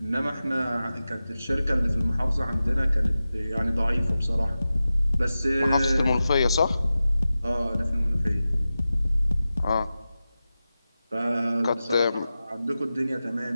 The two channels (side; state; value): both; inverted; correlation -0.94